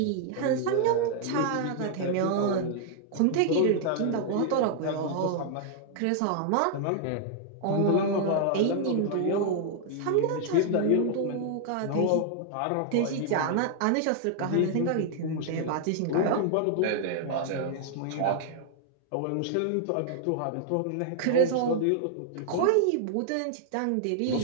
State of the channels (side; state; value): both; different; correlation -0.01